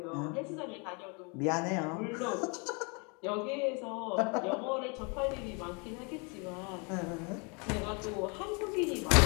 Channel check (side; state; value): right; quieter; 33.3 dB